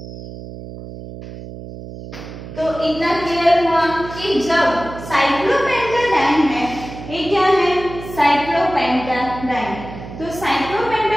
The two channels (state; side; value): noise; right; hum, 12 dB below the sound